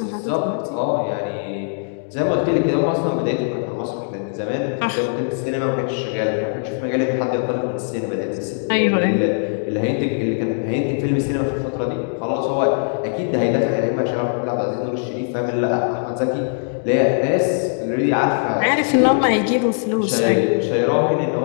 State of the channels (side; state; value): right; silent; digital silence